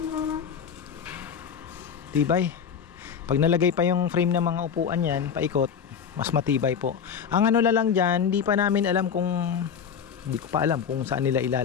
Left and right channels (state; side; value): quieter; right; 7.3 dB